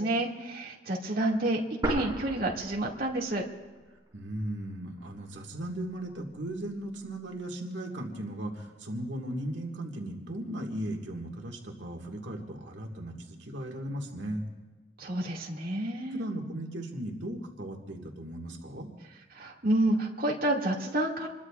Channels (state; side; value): normal; both; correlation 0.57